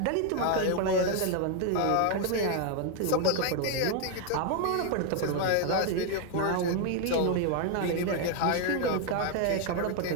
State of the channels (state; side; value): different; both; correlation 0.01